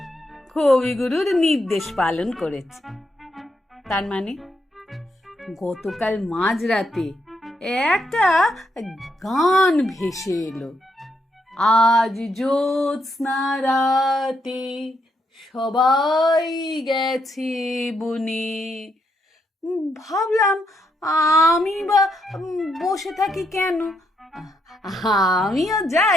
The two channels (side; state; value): both; normal; correlation 0.79